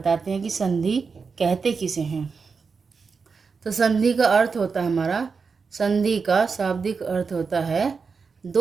हैं कि संधि कहते किसे हैं। तो संधि का अर्थ होता है हमारा, संधि का शाब्दिक अर्थ होता है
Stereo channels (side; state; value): left; quieter; 5.2 dB